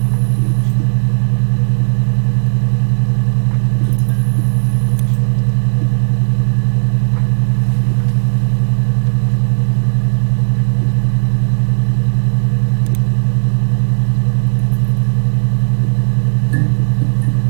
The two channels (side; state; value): left; silent; digital silence